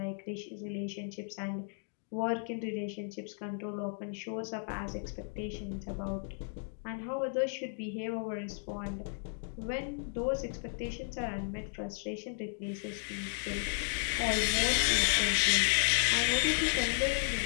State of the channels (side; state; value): right; silent; 55 dB below the other